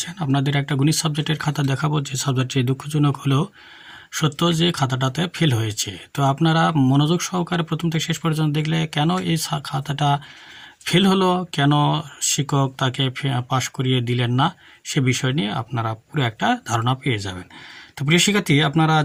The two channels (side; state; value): both; identical; correlation 1.00